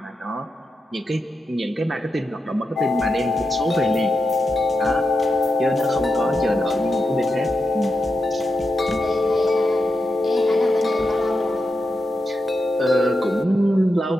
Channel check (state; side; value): normal; both; correlation 0.87